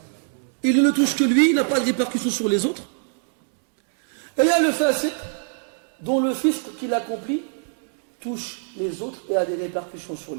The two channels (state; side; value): silent; left; digital silence